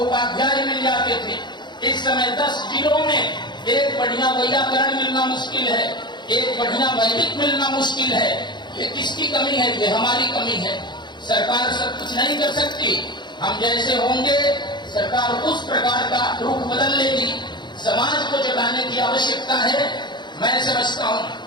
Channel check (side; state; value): right; late; 0.21 ms